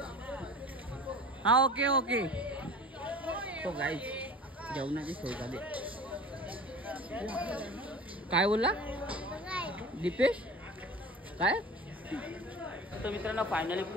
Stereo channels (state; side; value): normal; both; correlation 0.38